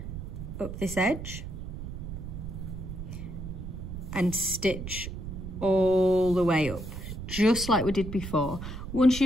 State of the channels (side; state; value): right; noise; rumble, 8 dB below the sound